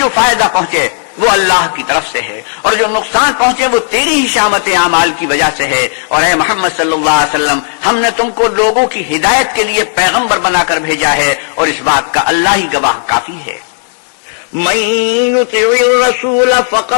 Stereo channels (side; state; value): right; silent; digital silence